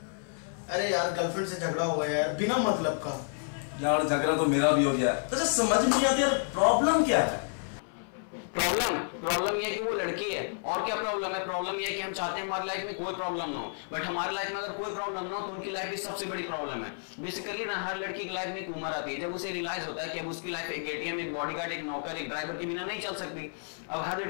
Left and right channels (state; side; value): silent; right; 57 dB below the other